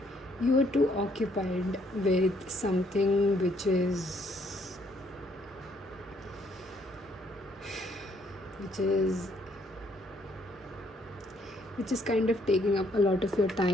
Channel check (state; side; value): normal; both; correlation 0.68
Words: you are too occupied with something which is kind of taking up a lot of your